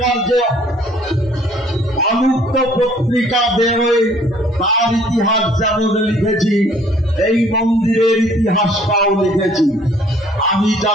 যে অনুক্ত পত্রিকা বেরোয় তার ইতিহাস যেমন লিখেছি, এই মন্দিরের ইতিহাসটাও লিখেছি। আমি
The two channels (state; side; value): normal; both; correlation 0.58